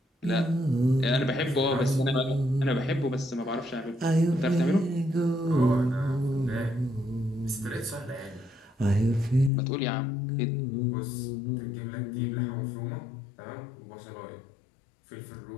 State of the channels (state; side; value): drops out; right; at 9.5 s